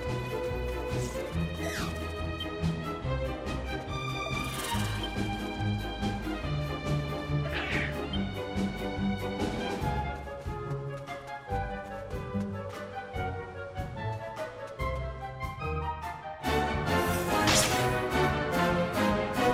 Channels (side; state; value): both; identical; correlation 1.00